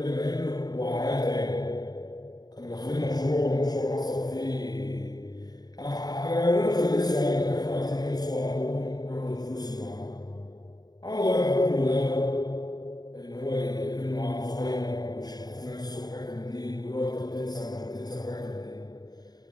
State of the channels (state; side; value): late; right; 0.19 ms